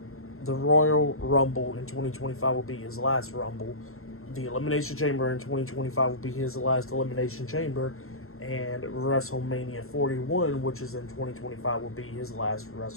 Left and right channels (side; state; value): right; late; 0.62 ms